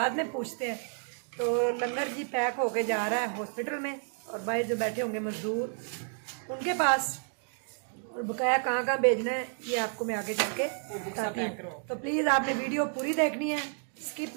में पूछते हैं। तो लंगर जी पैक होके जा रहा है हॉस्पिटल में, और भाई जो बैठे होंगे मजदूर उनके पास, और बकाया कहाँ कहाँ भेजना है ये आपको मैं आगे चल के बताती हूँ। तो प्लीज़ आपने वीडियो पूरी देखनी है, स्किप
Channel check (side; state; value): left; silent; 57 dB below the other